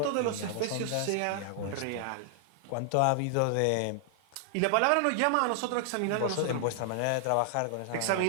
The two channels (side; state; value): both; different; correlation 0.00